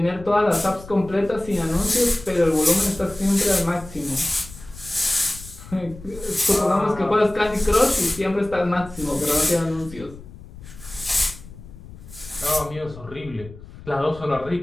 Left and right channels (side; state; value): left; noise; rumble, 17 dB below the sound